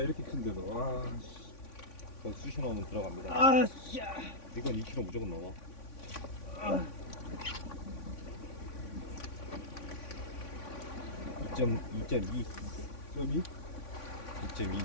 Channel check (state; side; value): late; right; 3.5 ms